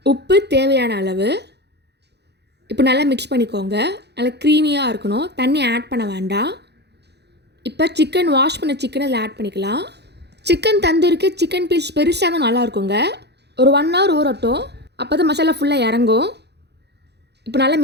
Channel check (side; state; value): left; late; 0.49 ms